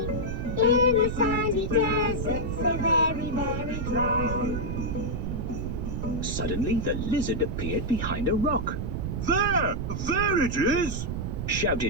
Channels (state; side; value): noise; right; rumble, 3 dB below the sound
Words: In the sandy desert, so very, very dry. Suddenly, the lizard appeared behind a rock. There it is!